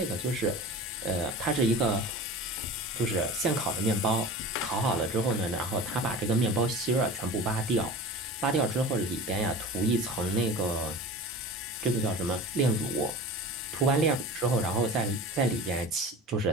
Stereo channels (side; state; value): both; normal; correlation 0.36